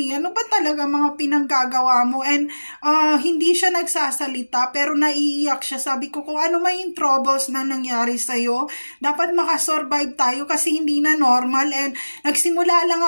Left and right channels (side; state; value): both; inverted; correlation -1.00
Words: Ano ba talaga mga pinanggagawa mo? And hindi siya nagsasalita, pero naiiyak siya. Sabi ko, kung ano may troubles na nangyari sa'yo, dapat makasurvive tayo, kasi hindi na normal. And nagsimula lang